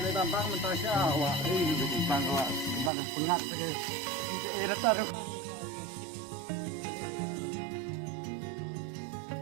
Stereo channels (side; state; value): left; drops out; at 2.9 s